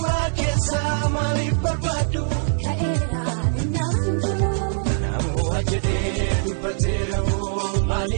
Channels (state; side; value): silent; left; 64 dB below the other